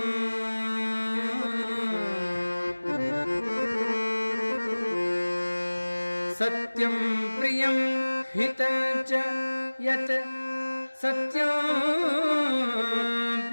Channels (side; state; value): both; inverted; correlation -1.00